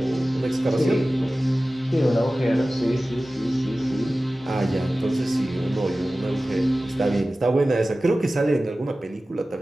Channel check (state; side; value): normal; both; correlation 0.96